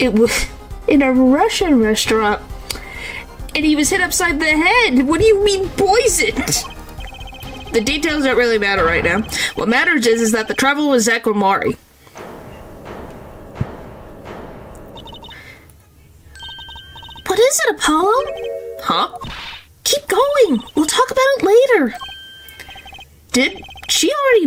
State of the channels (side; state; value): both; identical; correlation 1.00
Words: was in a Russian restaurant, and he was hit upside the head. What do you mean poisoned? The details don't really matter right now. What matters is that the traveler was Zach Guamari. What is it, Apollo? Huh? Keep going. We'll talk about it later. Did she already